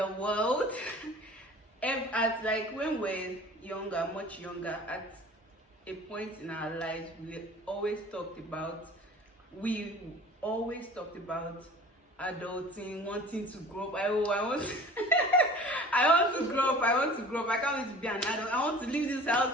world. When we're younger, much younger, at a point in our lives, we always talked about adulting, wanting to grow up. I want to grow up. I can't wait to be an adult. I want to leave this house,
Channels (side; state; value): both; normal; correlation 0.44